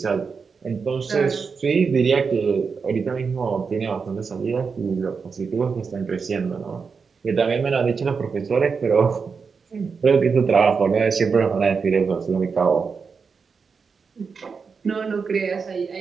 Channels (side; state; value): left; quieter; 5.4 dB